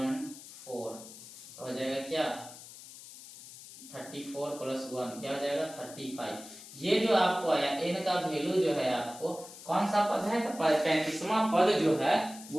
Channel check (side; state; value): left; noise; hiss, 16 dB below the sound